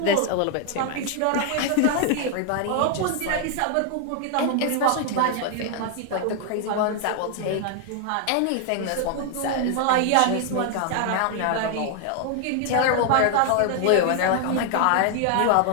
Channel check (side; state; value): both; different; correlation 0.00